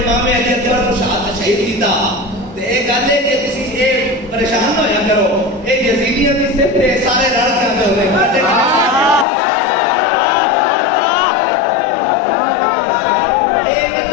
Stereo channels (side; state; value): right; drops out; at 9.2 s